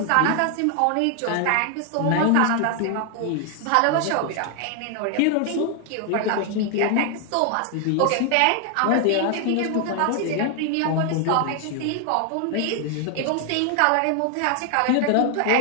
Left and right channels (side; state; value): both; different; correlation 0.00